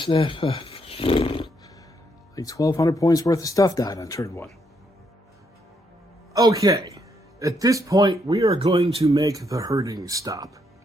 like 1,200 points worth of stuff died on turn 1. Okay, at this point we are going to make the herding stop.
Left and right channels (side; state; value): both; normal; correlation 0.75